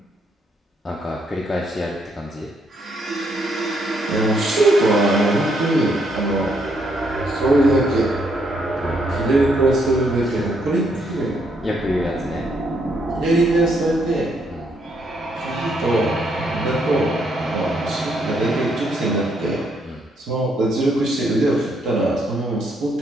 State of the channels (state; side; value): normal; both; correlation 0.73